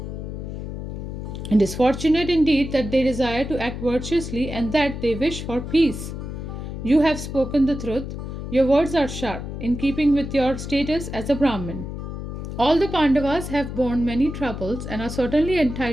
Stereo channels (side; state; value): left; noise; hum, 7 dB below the sound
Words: It is fortunate indeed that they desire to act virtuously and that they wish for peace. You have spoken the truth. Your words are sharp, in keeping with your status as a Brahmin. All the Pandavas have borne many troubles and are certainly